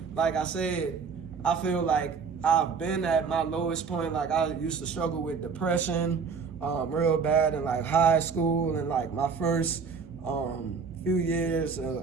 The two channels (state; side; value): quieter; left; 5.6 dB